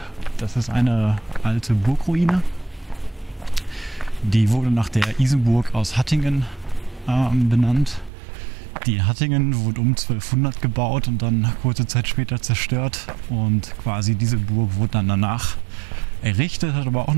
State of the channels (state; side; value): drops out; left; at 8.1 s